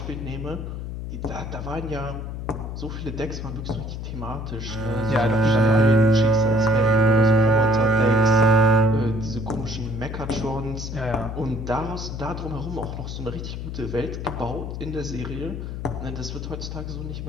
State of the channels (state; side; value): noise; left; hum, 6 dB below the sound